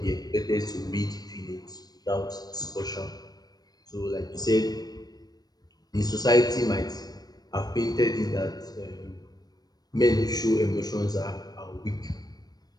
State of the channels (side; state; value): right; late; 0.19 ms